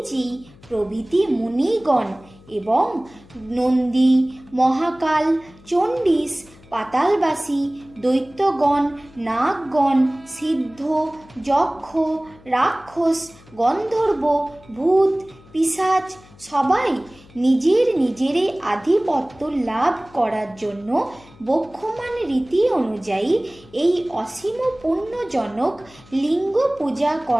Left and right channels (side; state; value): left; noise; hum, 25 dB below the sound